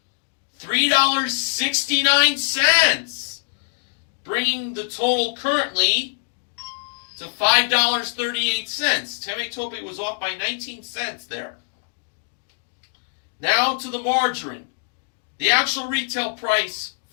$3.69, bringing the total currently to $5.38. Temetope was off by 19 cents there. Now to the margarine. The actual retail price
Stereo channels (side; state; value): right; silent; digital silence